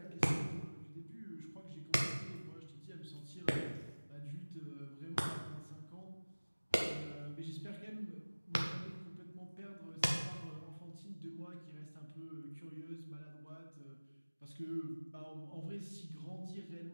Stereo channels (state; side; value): inverted; both; correlation -1.00